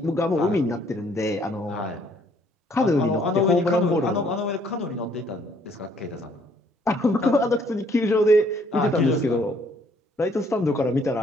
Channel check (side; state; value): both; normal; correlation 0.64